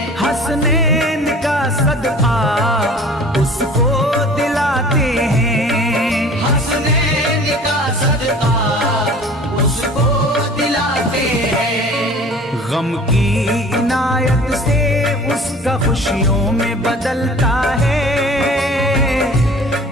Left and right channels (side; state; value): both; normal; correlation 0.45